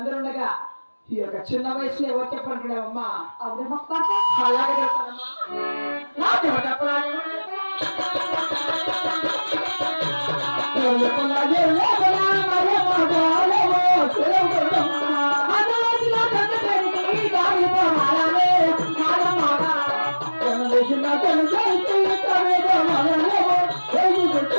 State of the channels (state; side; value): inverted; both; correlation -1.00